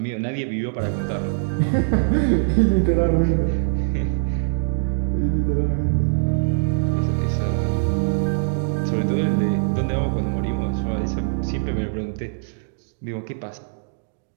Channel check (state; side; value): silent; left; digital silence